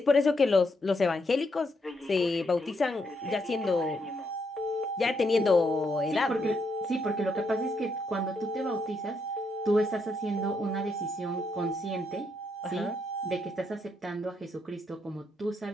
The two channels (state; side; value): normal; both; correlation 0.77